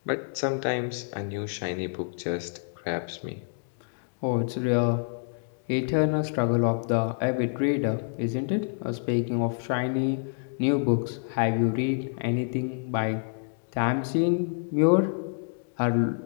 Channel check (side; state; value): right; silent; digital silence